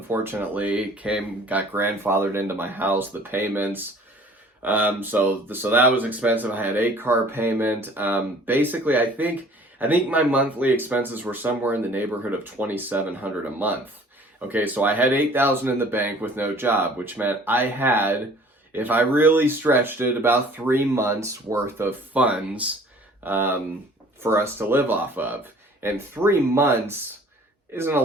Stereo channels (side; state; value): both; normal; correlation 0.51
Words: got grandfathered into my house, the payments. So that was expensive. I had a car payment. Basically, I think my monthly expenses were somewhere in the neighborhood of $2,700 a month. Okay, so I had $8,000 in the bank with no job, which meant I had, if I really stretched it, about 3 months worth of funds for us to live off of. And 3 months isn't a